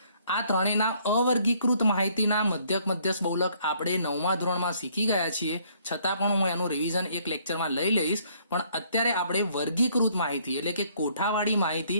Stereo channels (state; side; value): inverted; both; correlation -0.64